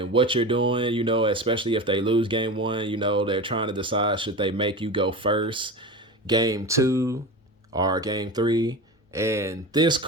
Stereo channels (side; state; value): both; normal; correlation 0.28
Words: what you're doing, especially if they lose game 1, they're trying to decide should they make you go first game 2 or game 3. And this